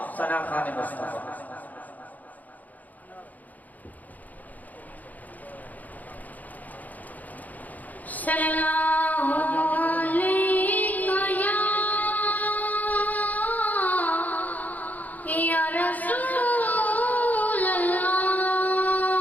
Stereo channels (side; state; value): right; late; 0.080 ms